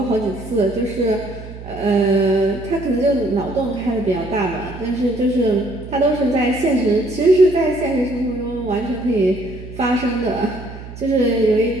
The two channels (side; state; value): right; noise; hum, 13 dB below the sound